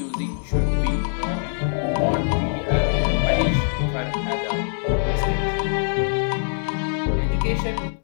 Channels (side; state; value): right; silent; digital silence